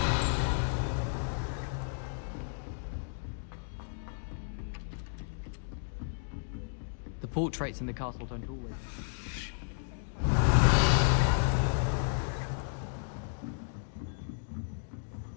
The portraits in the castle don't always.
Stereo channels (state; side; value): silent; right; digital silence